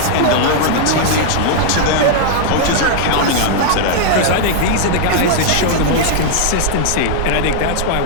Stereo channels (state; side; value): different; both; correlation -0.01